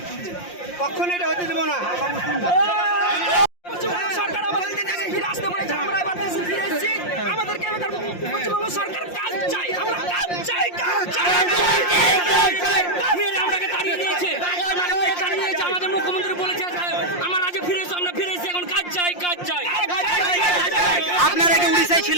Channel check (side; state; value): right; late; 5.7 ms